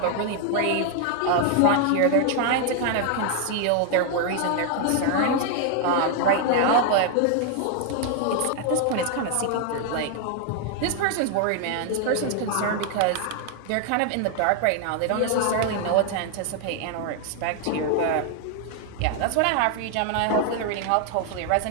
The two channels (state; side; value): different; both; correlation 0.00